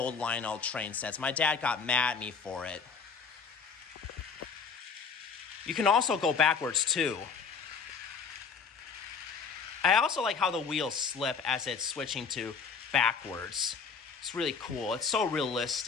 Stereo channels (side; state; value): right; quieter; 5.8 dB